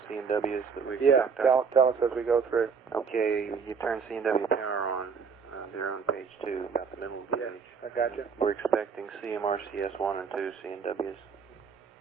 C&Ws that we Yeah, tell us as we go through. Okay, you turn C&W power on. They're on page 2, about the middle of the page. I got you. We're expecting CMRCS 1 and 2 C&Ws.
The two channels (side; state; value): left; quieter; 5.8 dB